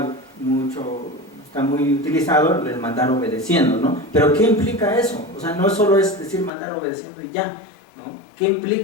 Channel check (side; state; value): right; drops out; at 6.5 s